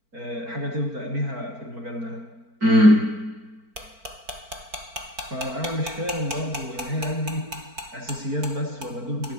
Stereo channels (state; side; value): late; left; 4.5 ms